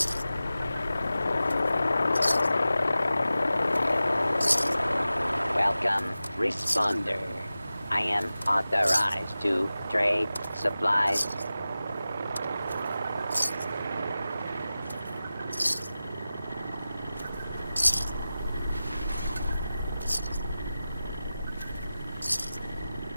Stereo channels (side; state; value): both; inverted; correlation -0.95